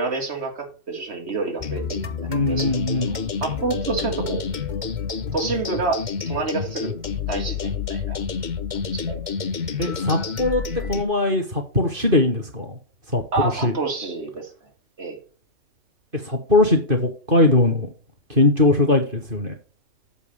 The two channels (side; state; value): left; late; 2.1 ms